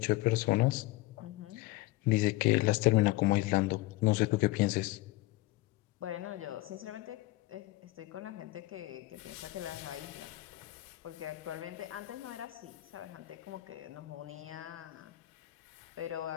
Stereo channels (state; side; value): quieter; right; 18.9 dB